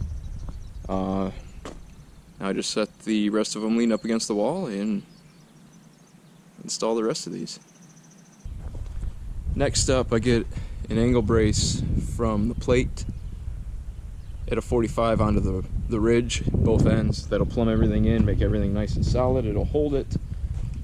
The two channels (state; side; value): identical; both; correlation 1.00